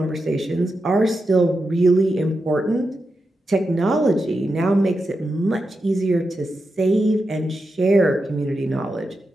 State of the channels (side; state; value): both; normal; correlation 0.88